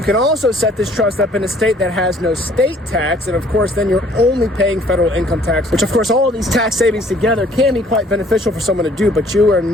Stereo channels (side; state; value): both; normal; correlation 0.58